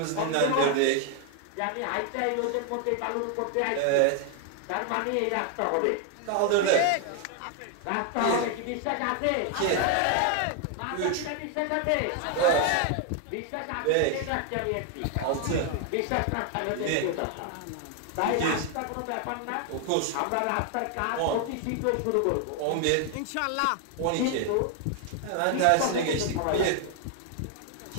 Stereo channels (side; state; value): both; different; correlation 0.00